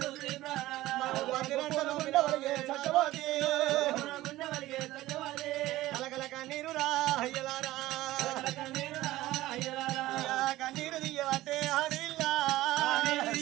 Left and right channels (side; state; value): left; quieter; 16.5 dB